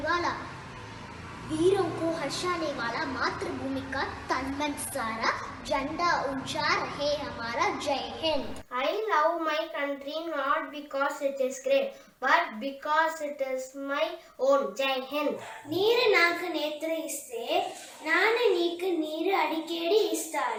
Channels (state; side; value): identical; both; correlation 1.00